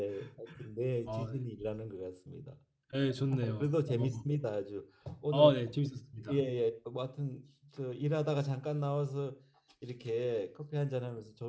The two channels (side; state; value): both; identical; correlation 1.00